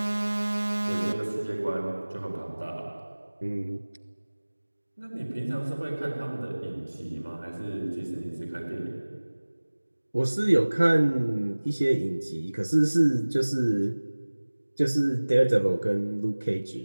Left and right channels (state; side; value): inverted; both; correlation -1.00